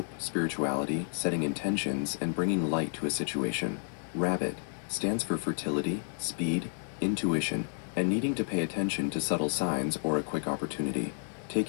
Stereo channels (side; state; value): right; silent; 57 dB below the other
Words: spirituality, setting intentions, and bringing light to a situation. Rabbit stands for fertility, speed, intuition, and needing to pay attention to subtle signs or a quick opportunity.